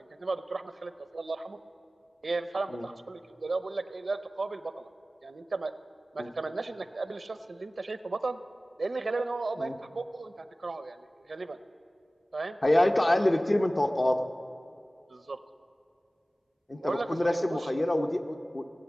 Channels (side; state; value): both; normal; correlation 0.97